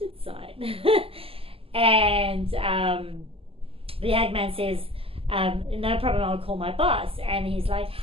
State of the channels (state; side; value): late; left; 0.27 ms